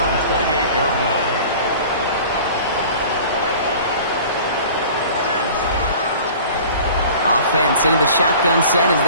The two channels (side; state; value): both; inverted; correlation -0.44